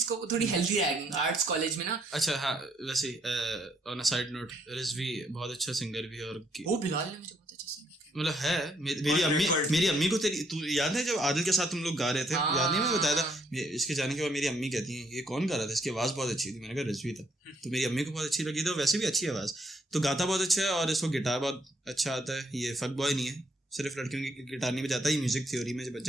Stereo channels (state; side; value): normal; both; correlation 0.70